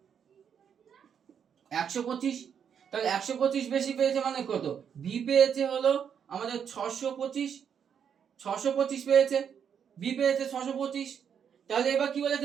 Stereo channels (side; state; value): left; quieter; 7.8 dB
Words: 125। তাহলে 125 বেশি পেয়েছে মানে কত, বি পেয়েছে হলো আমাদের 625 পেয়েছে, বি পেয়েছে 625। তাহলে এবার কি